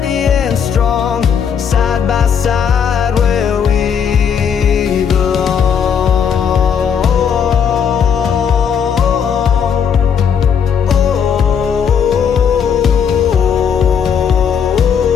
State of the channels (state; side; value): quieter; right; 7.3 dB